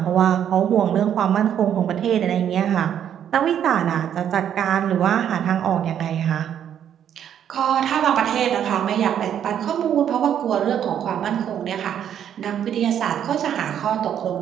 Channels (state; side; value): quieter; left; 9.5 dB